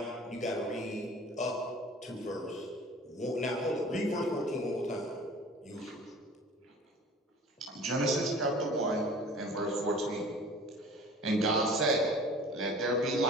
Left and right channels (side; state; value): both; normal; correlation 0.44